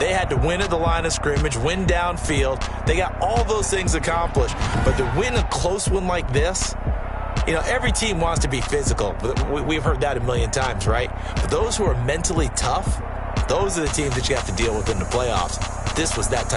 had to win at the line of scrimmage, win downfield. They got all those things accomplished. But to win a close one like this, you know, every team wants to be physical. We've heard that a million times, right? But those who are mentally tough, those are the teams that you have to deal with in the playoffs. This was that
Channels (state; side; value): identical; both; correlation 1.00